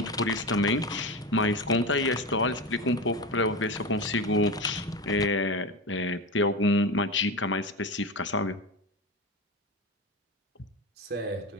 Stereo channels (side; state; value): both; normal; correlation 0.22